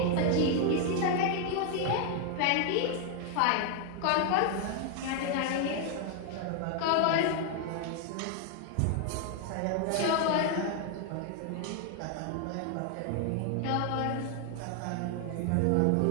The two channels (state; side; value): different; both; correlation 0.00